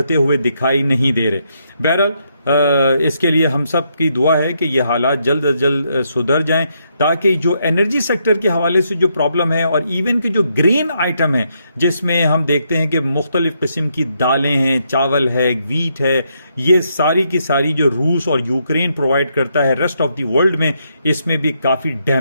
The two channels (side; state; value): both; inverted; correlation -0.77